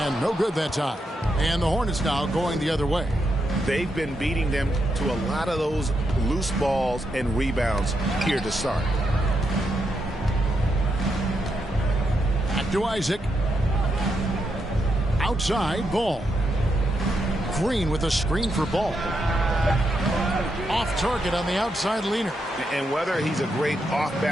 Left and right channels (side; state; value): both; normal; correlation 0.82